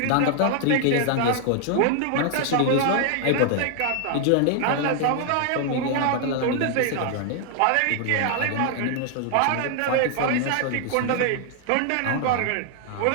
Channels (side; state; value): both; different; correlation 0.00